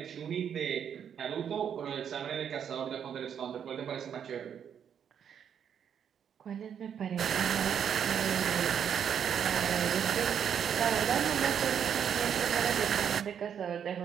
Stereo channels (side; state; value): left; quieter; 8.3 dB